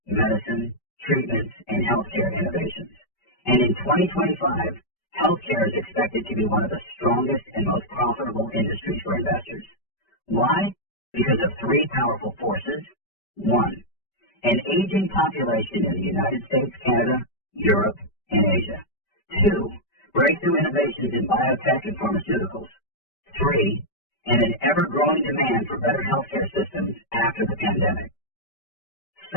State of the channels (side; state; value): right; late; 5.1 ms